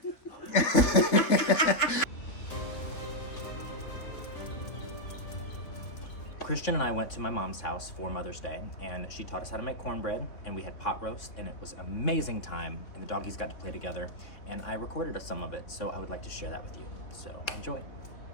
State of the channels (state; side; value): late; right; 3.8 ms